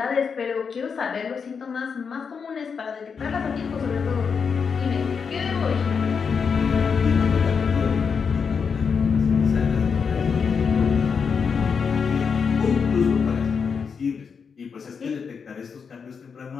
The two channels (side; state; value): right; quieter; 6.0 dB